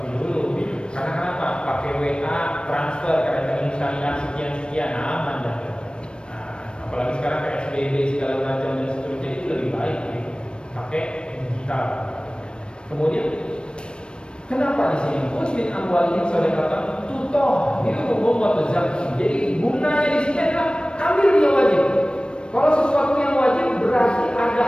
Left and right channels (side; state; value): right; late; 0.055 ms